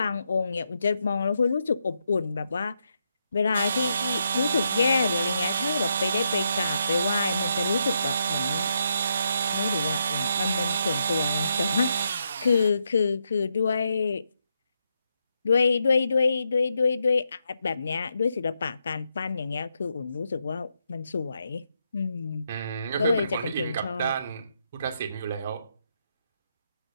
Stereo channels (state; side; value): inverted; both; correlation -0.80